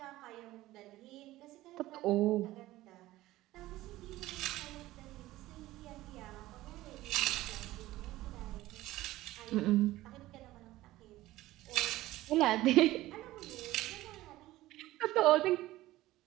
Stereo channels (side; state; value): left; quieter; 16.7 dB